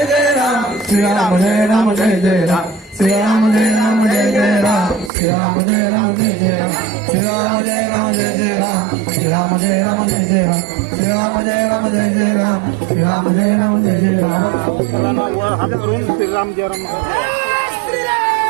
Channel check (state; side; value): drops out; left; at 5.1 s